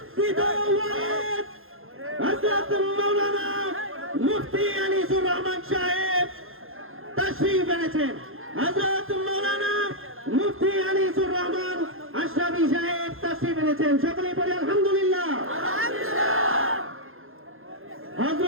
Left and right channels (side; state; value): left; late; 0.60 ms